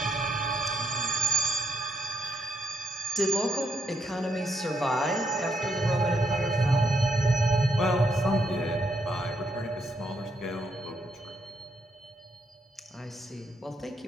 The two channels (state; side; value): normal; both; correlation 0.74